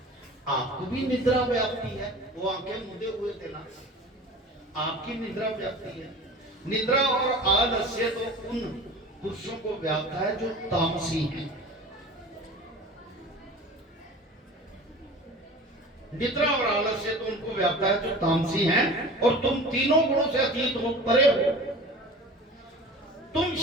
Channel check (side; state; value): both; normal; correlation 0.38